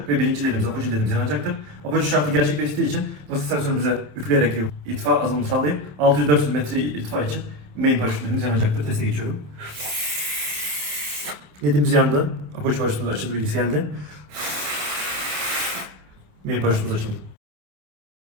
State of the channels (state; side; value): late; left; 27 ms